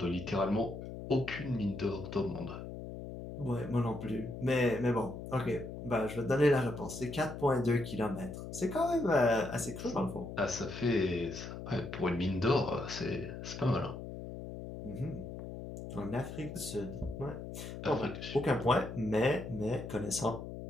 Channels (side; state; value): left; noise; hum, 9 dB below the sound